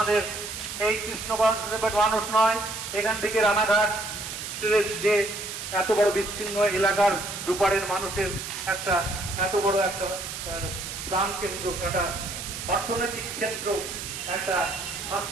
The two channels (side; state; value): right; noise; hiss, 7 dB below the sound